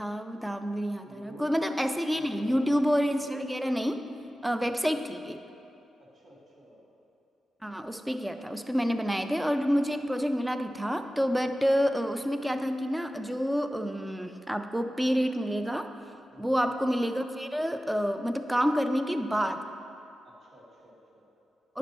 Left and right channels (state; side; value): normal; both; correlation 0.96